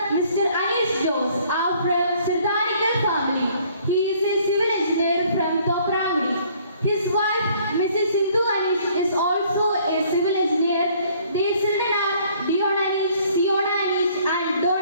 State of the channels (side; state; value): both; inverted; correlation -0.60